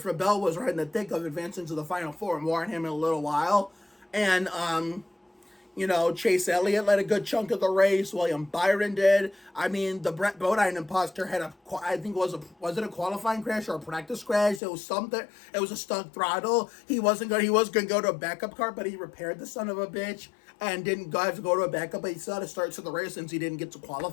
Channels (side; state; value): right; drops out; at 14.6 s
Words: Bell was right in the thick of advancing to the Final Four. More on him in a little while. And, Chase Elliott led a good chunk of the race. William Byron did. I mean, the Brett Bodine imposter had was it a qualifying crash or a practice crash? It was something. It was a stuck throttle. He was going to go to a backup car, but he repaired the son of a bitch and didn't have to go to a backup. But he still had to start to the race since he didn't get to